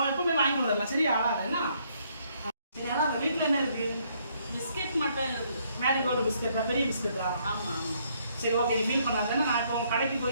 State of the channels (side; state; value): both; inverted; correlation -0.69